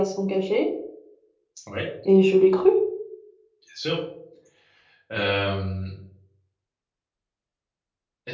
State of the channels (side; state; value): both; identical; correlation 1.00